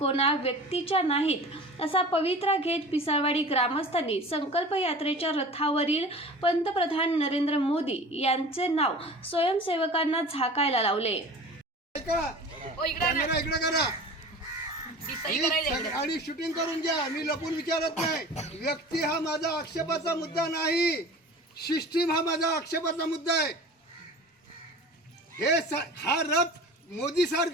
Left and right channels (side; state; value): both; normal; correlation 0.39